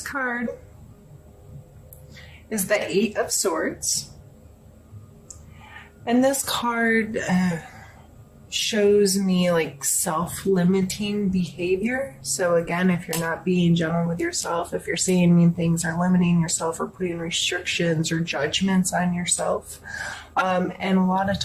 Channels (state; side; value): identical; both; correlation 1.00